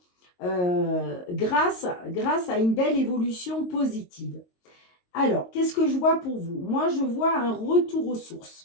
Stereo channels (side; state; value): right; late; 22 ms